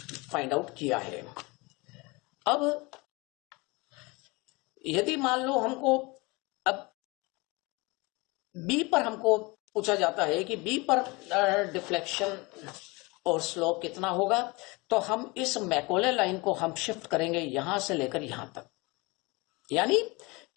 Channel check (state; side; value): quieter; right; 25.4 dB